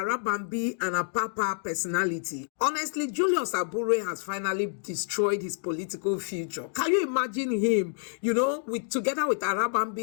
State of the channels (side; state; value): right; silent; digital silence